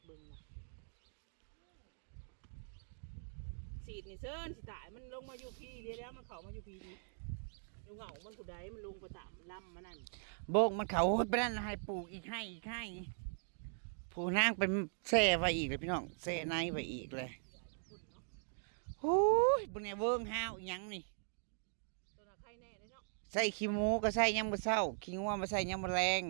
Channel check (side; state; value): left; silent; digital silence